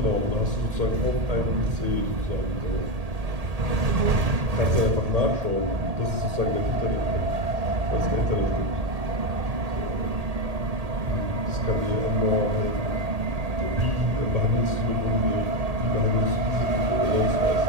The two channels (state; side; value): late; left; 1.8 ms